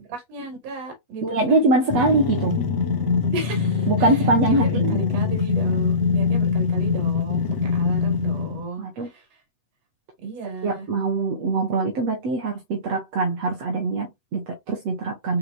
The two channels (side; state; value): left; late; 8.1 ms